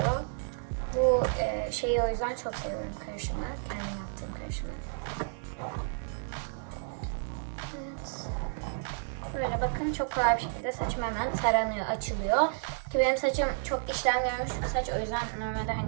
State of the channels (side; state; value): left; silent; digital silence